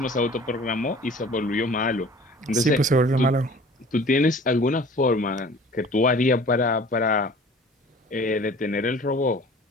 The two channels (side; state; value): both; normal; correlation 0.46